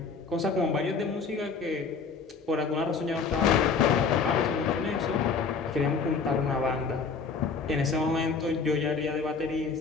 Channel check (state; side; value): quieter; right; 5.1 dB